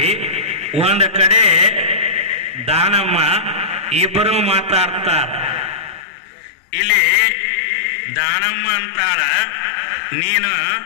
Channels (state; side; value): drops out; right; at 6.1 s